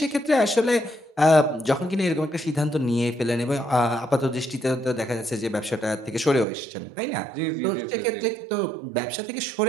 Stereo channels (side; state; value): left; drops out; at 6.5 s